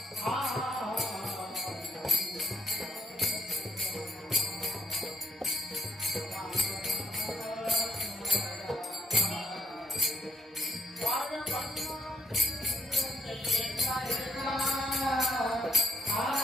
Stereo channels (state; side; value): normal; both; correlation 0.75